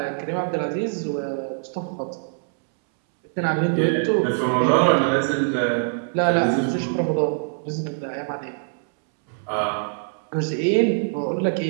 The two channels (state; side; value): silent; left; 63 dB below the other